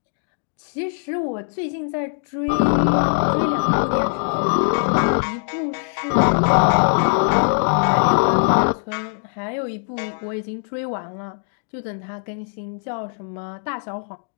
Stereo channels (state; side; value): silent; right; 65 dB below the other